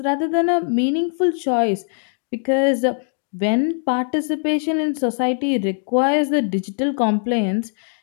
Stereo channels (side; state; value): right; silent; digital silence